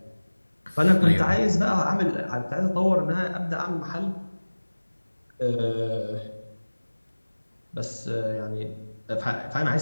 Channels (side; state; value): both; inverted; correlation -1.00